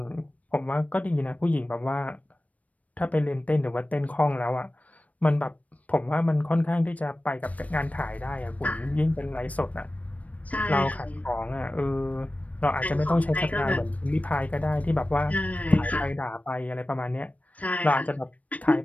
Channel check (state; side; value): late; right; 0.069 ms